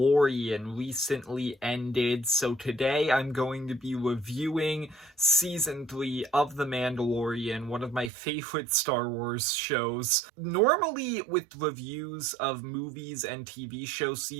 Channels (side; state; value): left; drops out; at 8.1 s